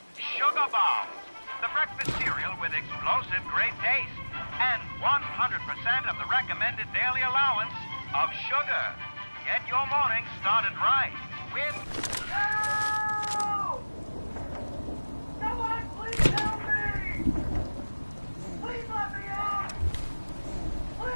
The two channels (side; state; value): both; inverted; correlation -1.00